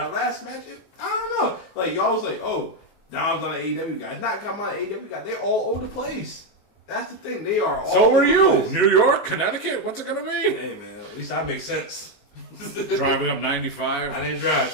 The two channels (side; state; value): right; late; 19 ms